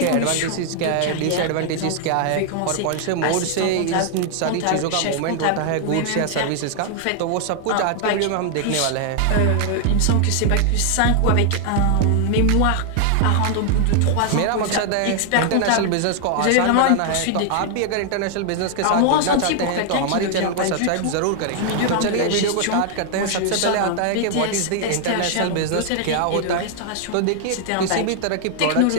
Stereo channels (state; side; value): different; both; correlation 0.00